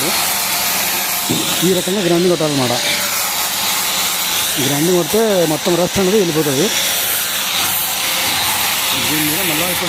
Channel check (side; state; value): both; identical; correlation 1.00